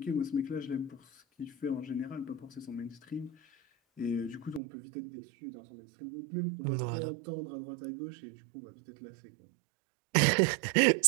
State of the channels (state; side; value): drops out; left; at 4.6 s